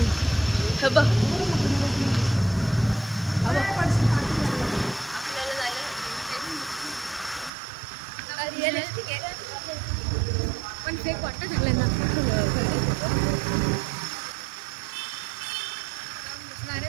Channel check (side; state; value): left; drops out; at 7.5 s